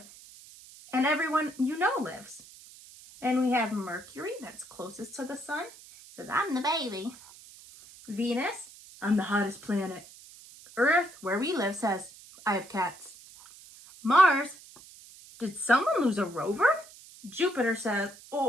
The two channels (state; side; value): noise; right; hiss, 20 dB below the sound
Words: and everyone you know lives. And we have Mercury, that's closest to the sun. It says, "I'm the baby." Venus, "I'm the hottest planet." Earth, where we live, says, "I have cats." Mars, "Did someone lose a rover?" Jupiter says,